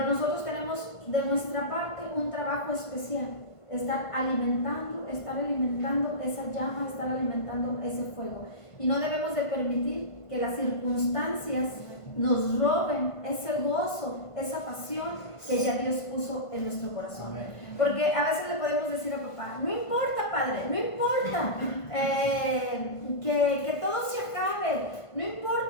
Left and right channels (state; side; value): late; right; 1.5 ms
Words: nosotros tenemos de nuestra parte un trabajo especial. Estar alimentando esa llama, estar alimentando ese fuego. Y no debemos de permitir que las circunstancias nos roben ese gozo, esa pasión que ya Dios puso en nuestro corazón. Porque a veces le podemos decir a papá, no importa, padre, no importa que todo se acabe, no